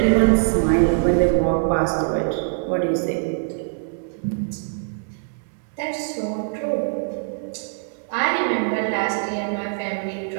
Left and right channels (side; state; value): left; silent; 64 dB below the other